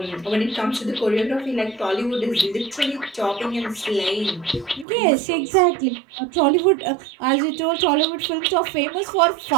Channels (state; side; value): drops out; left; at 4.9 s